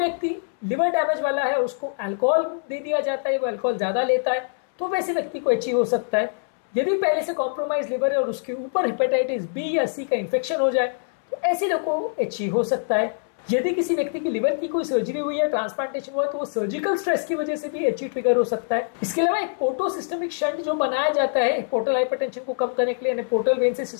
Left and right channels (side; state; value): right; silent; 63 dB below the other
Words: लिवर डैमेज वाला है, उसको अल्कोहल दे दिया जाता है, वो अल्कोहल ज्यादा लेता है, तो वैसे व्यक्ति को HE हो सकता है। यदि पहले से कॉम्प्रोमाइज लिवर है और उसके ऊपर हेपेटाइटिस B या C का इंफेक्शन हो जाए, तो ऐसे लोगों को HE हो सकता है। यदि किसी व्यक्ति की लिवर की कोई सर्जरी हुई है, ट्रांसप्लांटेशन हुआ है, तो वो सर्जिकल स्ट्रेस की वजह से भी HE ट्रिगर हो सकता है। इसके अलावा एक पोर्टो सिस्टमिक शंट जो बनाया जाता है पोर्टल हाइपरटेंशन को कम करने के लिए, यानी पोर्टल वेन से